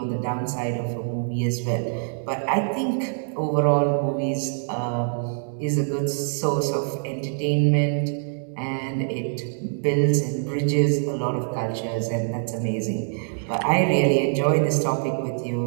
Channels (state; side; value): silent; left; digital silence